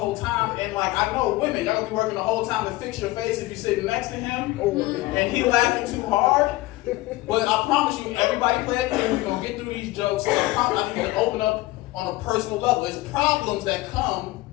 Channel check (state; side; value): quieter; right; 18.9 dB